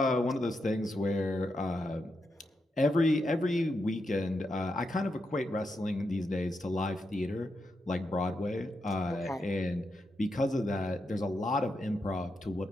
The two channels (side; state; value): both; normal; correlation 0.84